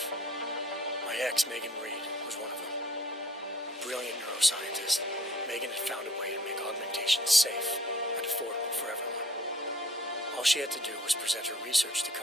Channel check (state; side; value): normal; both; correlation 0.56